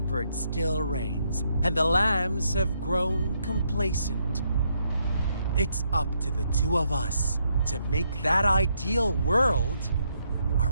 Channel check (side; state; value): both; inverted; correlation -0.76